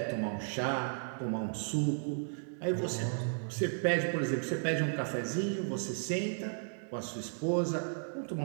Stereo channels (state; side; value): silent; left; digital silence